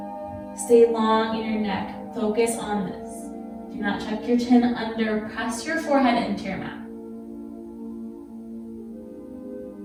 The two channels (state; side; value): identical; both; correlation 1.00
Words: Stay long in your neck. Focus on this. Do not tuck your chin under. Press your forehead into your mat.